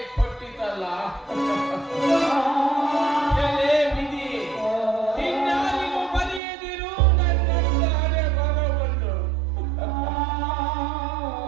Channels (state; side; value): drops out; left; at 6.4 s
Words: ಕೊಟ್ಟಿತಲ್ಲ. ಎಲೆ ವಿಧಿ, ಇನ್ನಾರಿಗೂ ಬರೆಯದಿರು ನನ್ನ ಹಣೆ ಬರವನ್ನು.